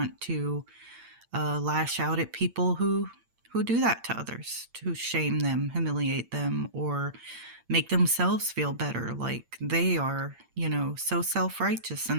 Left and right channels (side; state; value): left; late; 8.7 ms